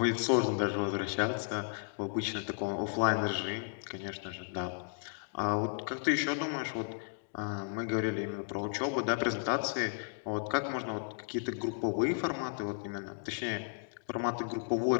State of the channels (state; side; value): silent; right; digital silence